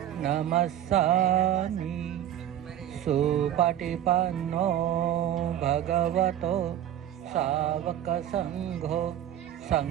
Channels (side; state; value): left; quieter; 11.3 dB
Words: नमस्सामि सुपटिपन्नो भगवतो सावकसंघो